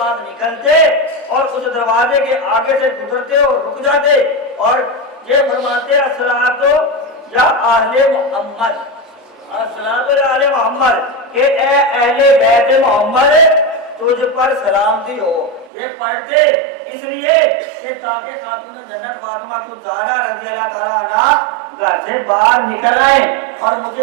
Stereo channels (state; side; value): drops out; left; at 15.7 s